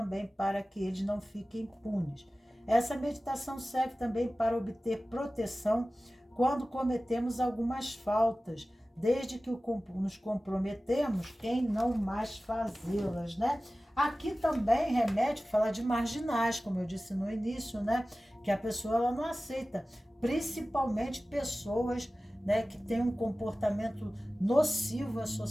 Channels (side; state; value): both; normal; correlation 0.96